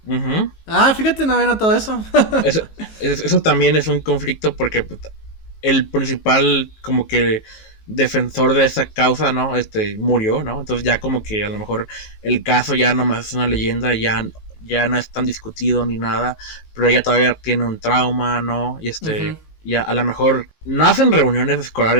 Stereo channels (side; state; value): right; late; 19 ms